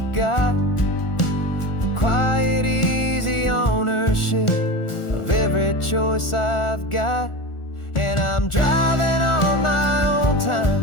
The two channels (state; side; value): late; right; 1.4 ms